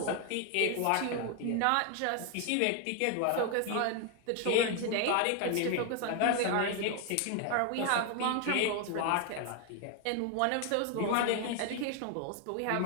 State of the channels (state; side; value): different; both; correlation 0.01